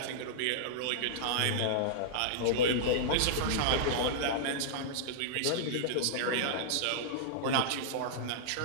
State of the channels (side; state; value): both; different; correlation -0.02